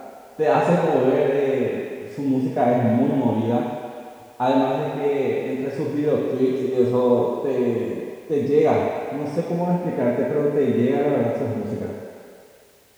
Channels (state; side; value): identical; both; correlation 1.00